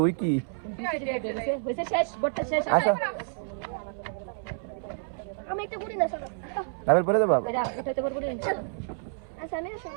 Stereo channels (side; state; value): left; silent; 59 dB below the other